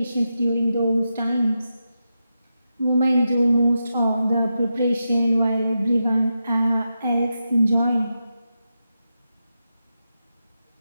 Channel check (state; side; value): inverted; both; correlation -0.88